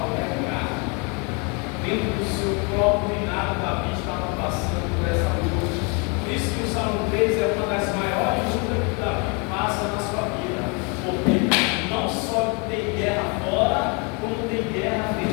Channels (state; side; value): quieter; right; 33.0 dB